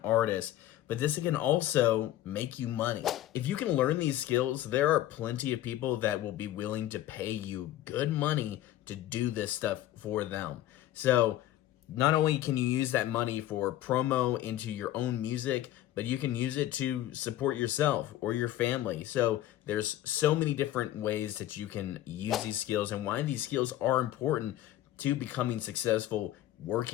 artist, but this can also make you money. If you can learn these skills, there are plenty of people that will be willing to pay you good money to do this stuff for them. So not only can you use that money for promo into your own music, but you can use it to support yourself or your family. So there's so many different ways that you can use these skills and why these skills are important to becoming successful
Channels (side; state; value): right; quieter; 13.7 dB